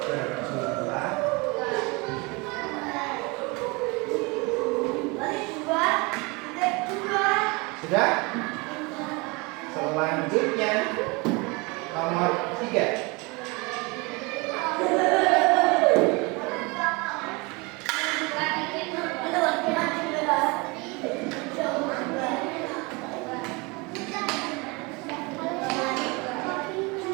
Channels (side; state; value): left; quieter; 27.2 dB